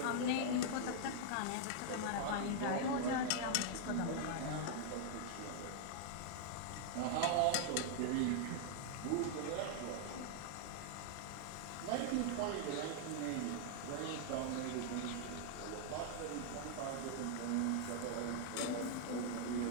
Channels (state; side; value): different; both; correlation -0.01